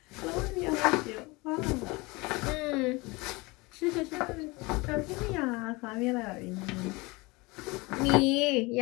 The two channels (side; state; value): right; quieter; 24.4 dB